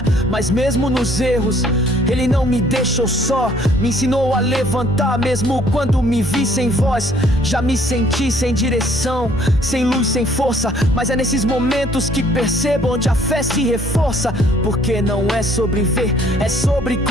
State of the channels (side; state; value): both; normal; correlation 0.60